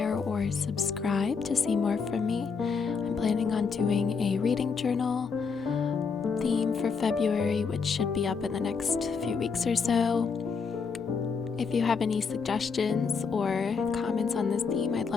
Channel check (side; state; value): right; quieter; 5.4 dB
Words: or subscribe to see more from me. I'm planning on doing a reading journal theme for February, which should be up in the next few weeks or so. If you have any suggestions or comments on this theme, I'd